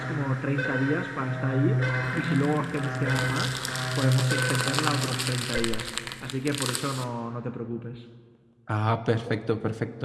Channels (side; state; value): both; identical; correlation 1.00